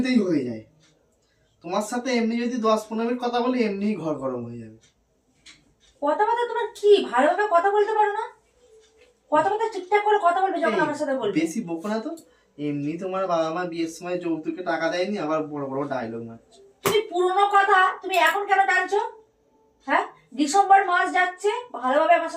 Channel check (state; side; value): identical; both; correlation 1.00